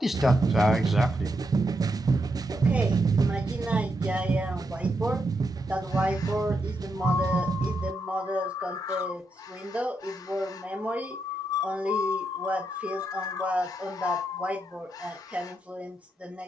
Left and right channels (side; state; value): both; normal; correlation 0.82